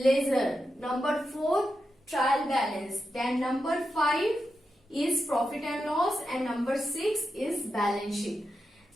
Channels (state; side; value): normal; both; correlation 0.88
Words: number 4 trial balance, then number 5 is profit and loss and number 6 is balance